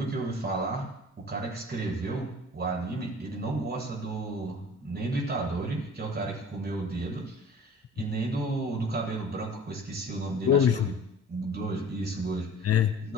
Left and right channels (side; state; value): both; normal; correlation 0.45